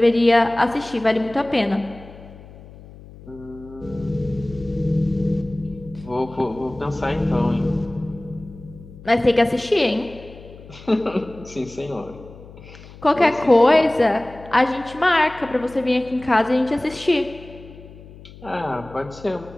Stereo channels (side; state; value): left; noise; hum, 19 dB below the sound